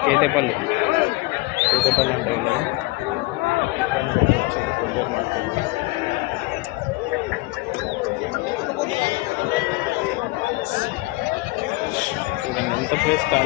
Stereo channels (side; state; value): right; quieter; 22.3 dB